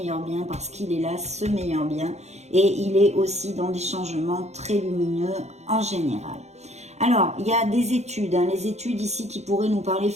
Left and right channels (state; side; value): late; left; 0.32 ms